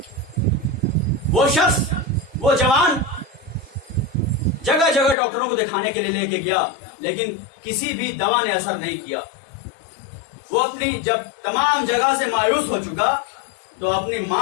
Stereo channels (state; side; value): drops out; right; at 5.2 s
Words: وہ شخص, وہ جوان جگہ جگہ ڈاکٹروں کو دکھانے کے لیے لے کے گیا, لیکن کسی بھی دوا نے اثر نہیں کیا. وہ اپنی جب تمام جگہ سے مایوس ہو چکا تو اپنی